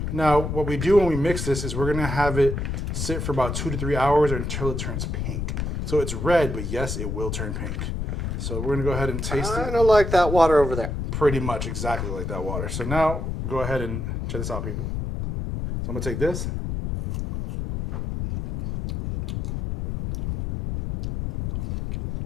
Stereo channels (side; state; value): left; noise; rumble, 3 dB below the sound